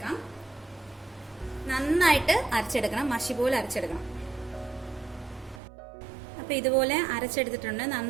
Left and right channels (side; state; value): left; drops out; at 5.6 s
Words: നന്നായിട്ട് അരച്ചെടുക്കണം, മഷി പോലെ അരച്ചെടുക്കണം. അപ്പോൾ ഇതുപോലെ അരച്ചെടുത്തിട്ടുണ്ട്,